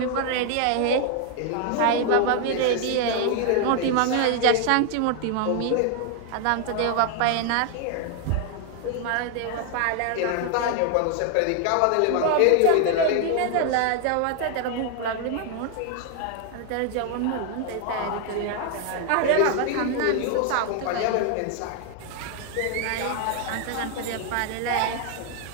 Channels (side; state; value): both; different; correlation 0.00